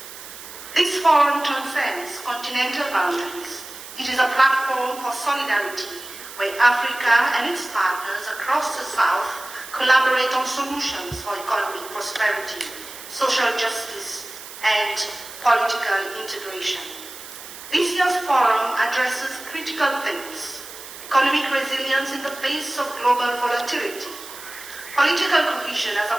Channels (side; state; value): right; noise; hiss, 14 dB below the sound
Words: This forum transcends continental boundaries. It is a platform for solidarity, where Africa and its partners across the South collaborate on solutions for economic prosperity, social justice, and political integration. This year's forum addresses critical themes: economic resilience in the face of global volatility, political cohesion as